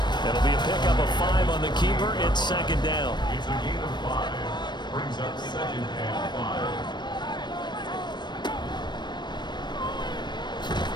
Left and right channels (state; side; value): late; right; 0.22 ms